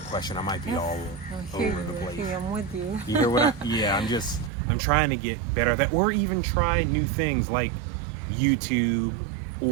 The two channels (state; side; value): drops out; left; at 4.5 s